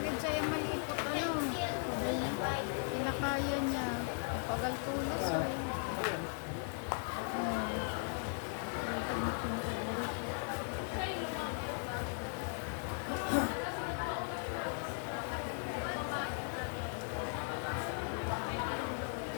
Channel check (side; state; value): right; silent; 53 dB below the other